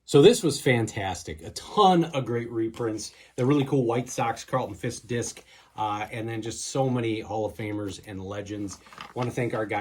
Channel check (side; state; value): both; identical; correlation 1.00